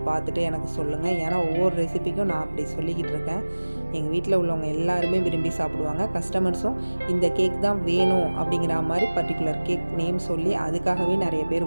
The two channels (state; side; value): inverted; both; correlation -1.00